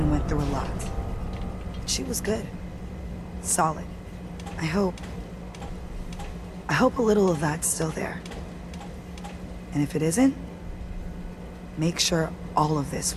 went through a lot. She was good. Solid. I hope a little of that's still there. And if it isn't, make sure all of this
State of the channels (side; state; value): both; identical; correlation 1.00